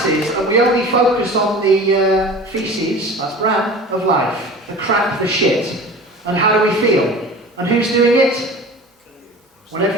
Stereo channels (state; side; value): normal; both; correlation 0.38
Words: and we only focus on the feces, that's brown, of life, the crap, the shit. And how do we feel? And who's doing it?